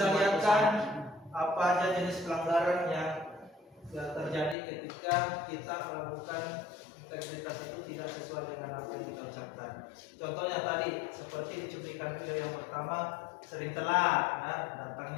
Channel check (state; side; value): drops out; right; at 4.5 s